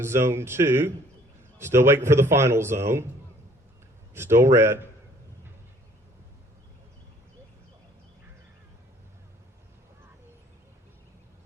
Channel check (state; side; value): normal; both; correlation 0.58